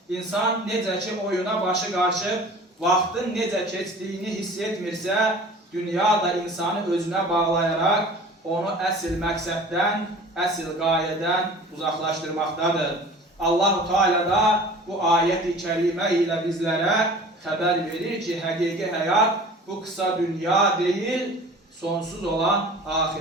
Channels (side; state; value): both; normal; correlation 0.43